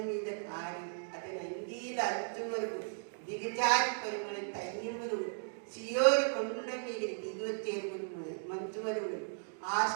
మీద కారి అతని అంగీల అంచు వరకు దిగజారి పరిమళ తైన్యములు సియోరు కొండ మీద దిగొచ్చే మంచు వరువులు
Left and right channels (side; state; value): left; silent; digital silence